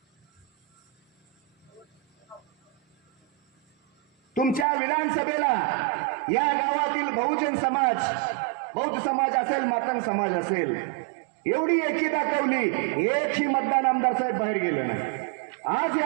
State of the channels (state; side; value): drops out; left; at 4.7 s